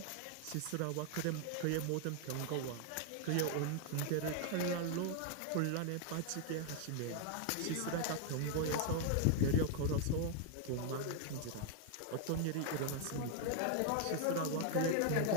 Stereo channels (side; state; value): both; different; correlation 0.00